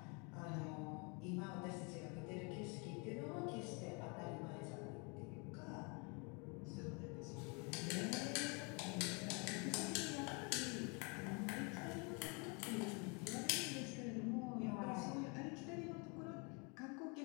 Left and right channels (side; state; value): right; quieter; 32.6 dB